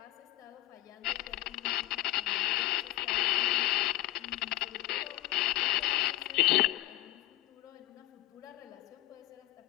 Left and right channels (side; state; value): right; quieter; 16.9 dB